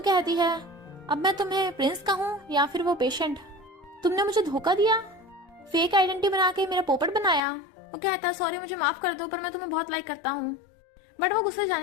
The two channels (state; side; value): drops out; right; at 7.4 s